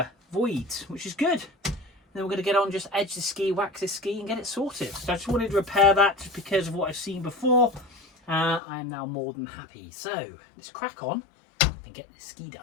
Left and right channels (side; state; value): right; drops out; at 8.6 s